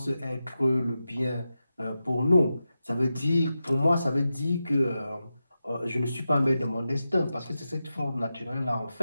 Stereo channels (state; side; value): inverted; both; correlation -0.91